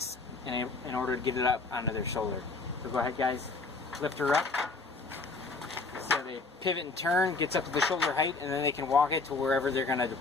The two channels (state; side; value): quieter; right; 3.9 dB